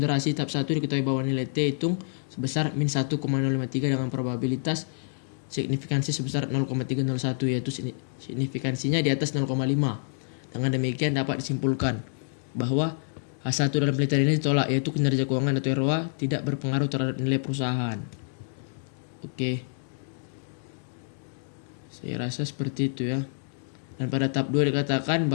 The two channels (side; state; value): right; silent; digital silence